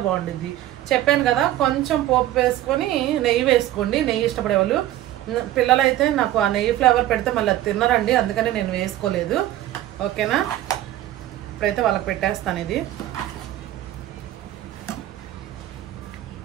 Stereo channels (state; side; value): quieter; left; 13.8 dB